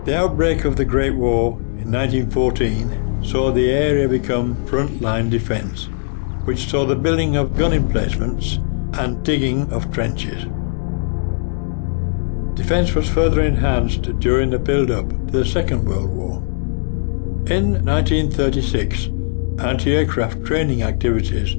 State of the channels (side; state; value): right; silent; digital silence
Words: The outbreak of the Great War in 1914 saw the area become front-line defence, which saw the building of gun emplacements and digging of trenches. Defence was further enhanced during the build-up to the Second World War. In 1936, anti-aircraft training activities